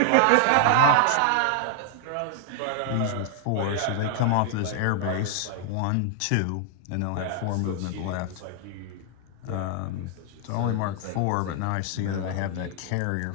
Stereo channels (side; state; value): both; different; correlation 0.00